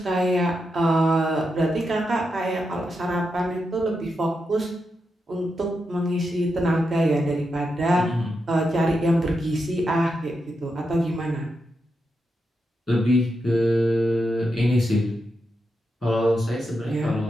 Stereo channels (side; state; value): both; normal; correlation 0.86